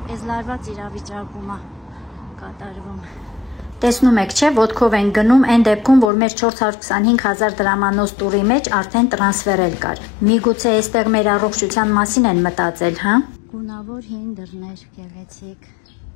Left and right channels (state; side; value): drops out; right; at 6.1 s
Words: այս լարված իրավիճակում է կատարվում։ Տեսնում եք, չէ, ոտքով են գնում այն դեպքում, որ մեր 425,000 դրամանոց տուրի մեջ արդեն տրանսֆերել կար։ Միգուցե այստեղ մեր առողջության մասին են մտածել, հա։ Գունավոր հին դռներ, գեղեցիկ։